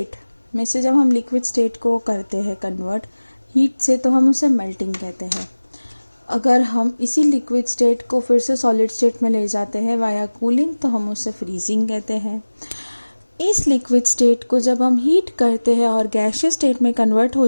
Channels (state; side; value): inverted; both; correlation -1.00